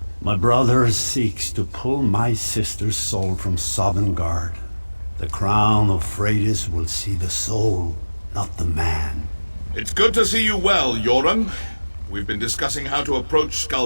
My brother seeks to pull my sister's soul from Sovngarde. The crown of Freydis will see the soul, not the man. It's good to see you well, Yoren. We've been discussing how to approach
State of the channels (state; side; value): inverted; both; correlation -1.00